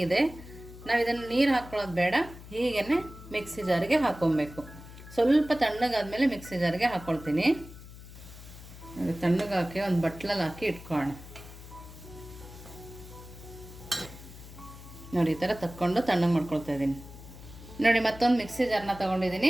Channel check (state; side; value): noise; left; hum, 16 dB below the sound